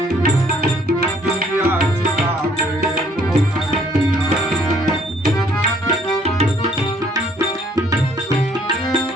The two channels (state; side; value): normal; both; correlation 0.62